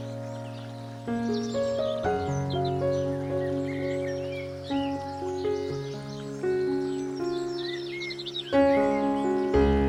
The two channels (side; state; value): both; identical; correlation 1.00